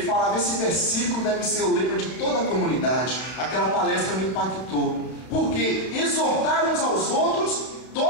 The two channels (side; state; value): right; late; 32 ms